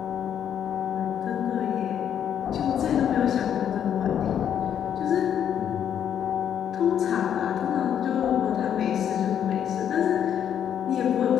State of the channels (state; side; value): quieter; right; 9.2 dB